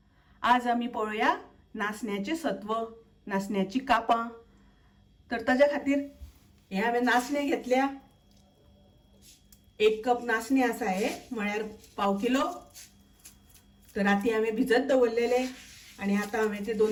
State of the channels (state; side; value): identical; both; correlation 1.00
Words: आज आमी पळोवया नाचण्याचे सत्व, नाचण्याची कापां। तर ताज्या खातीर हे हांवें नाचणे घेतल्या। 1 कप नाचणे आसा हे, म्हळ्यार पाव किलो। तर राती हांवें भिजत दवरलेले आनी आतां हांवें ते